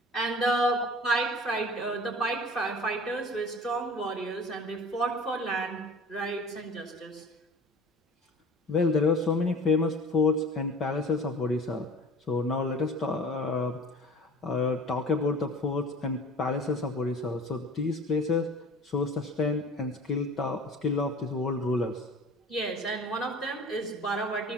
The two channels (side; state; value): both; normal; correlation 0.42